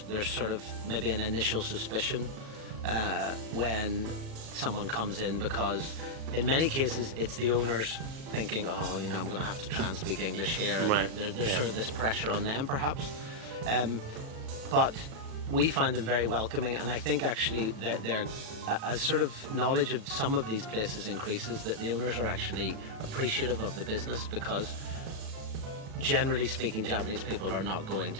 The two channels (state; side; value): late; left; 37 ms